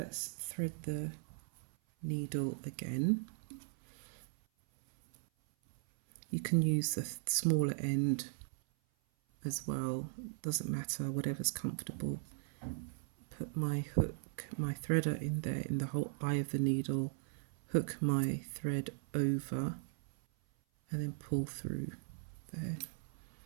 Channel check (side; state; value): left; silent; 52 dB below the other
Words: thread the needle again. You can use the smaller end as well, doesn't matter, whatever's comfortable. Put my hook, my threader in there in the whole eye of the needle, hook my thread over and then pull through there.